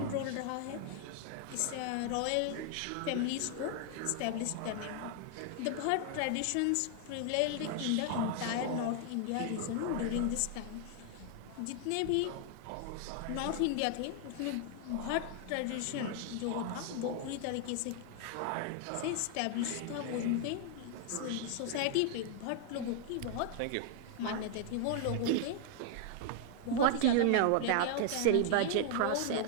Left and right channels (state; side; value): different; both; correlation 0.00